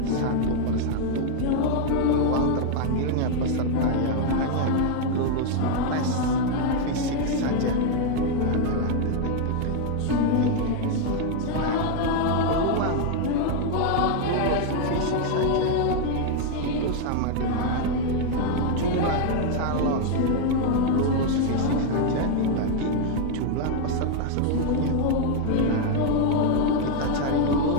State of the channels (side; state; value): both; different; correlation 0.00